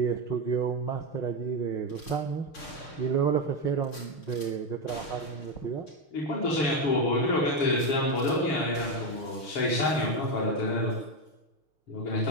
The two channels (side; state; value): right; late; 6.5 ms